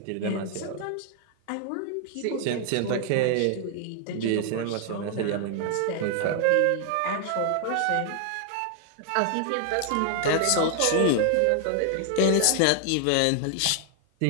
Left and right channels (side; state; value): both; different; correlation 0.00